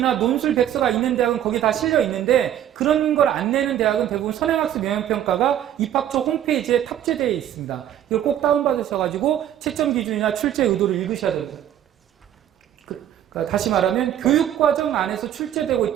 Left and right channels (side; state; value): left; quieter; 11.0 dB